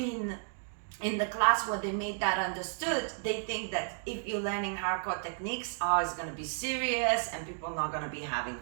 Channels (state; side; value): silent; left; 56 dB below the other